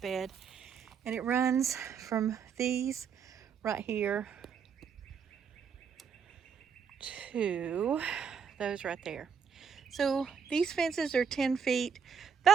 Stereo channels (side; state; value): left; quieter; 6.8 dB